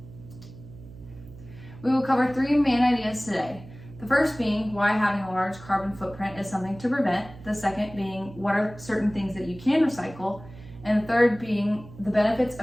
We will cover three main ideas today. The first being why having a large carbon footprint is something to prevent. The second being what are certain things that you can recycle. And the third being the benefits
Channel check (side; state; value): right; noise; hum, 17 dB below the sound